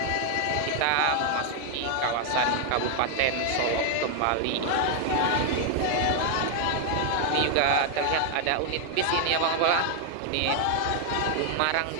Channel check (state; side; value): different; both; correlation 0.00